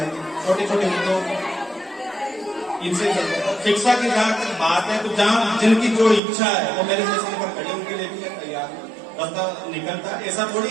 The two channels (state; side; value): drops out; left; at 6.2 s